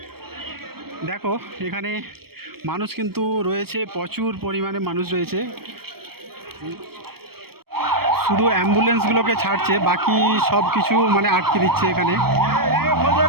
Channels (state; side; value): late; left; 0.95 ms